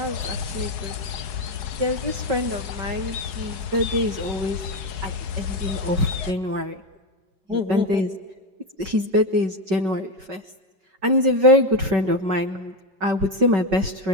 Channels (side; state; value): left; late; 4.8 ms